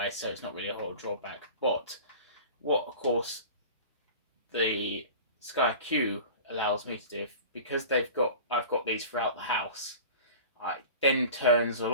so it's not really a whole drawback. But what, of course, the SkyQ allows me to do, because I've got these throughout the house, it then turns a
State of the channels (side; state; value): both; inverted; correlation -0.38